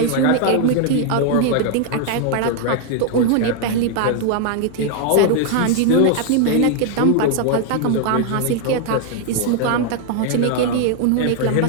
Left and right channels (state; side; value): different; both; correlation 0.00